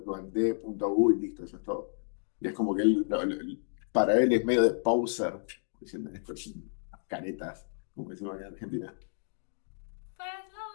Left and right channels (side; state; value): right; silent; digital silence